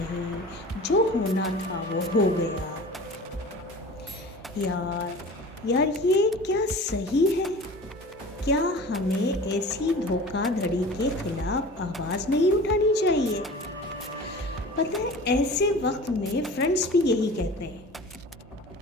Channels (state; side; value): normal; both; correlation 0.40